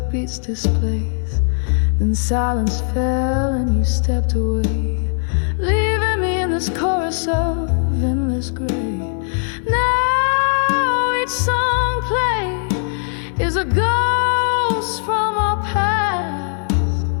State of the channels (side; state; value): right; silent; 56 dB below the other